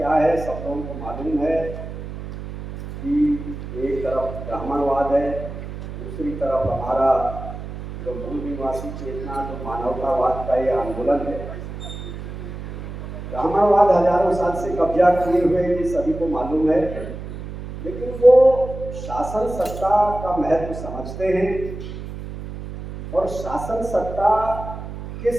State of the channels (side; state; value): right; noise; hum, 9 dB below the sound